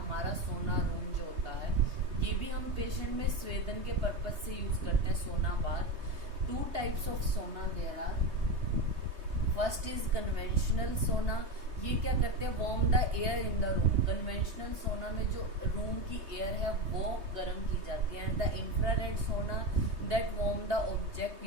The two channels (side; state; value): left; late; 3.2 ms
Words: सोना रूम जो होता है। ये भी हम पेशेंट में स्वेदन के पर्पज से यूज करते हैं sauna bath. 2 types of sauna there are. First is conventional sauna. ये क्या करते हैं, warm the air in the room. Conventional sauna में जो रूम की एयर है वो गर्म की जाती है। एंड द इंफ्रारेड सोना that warm the object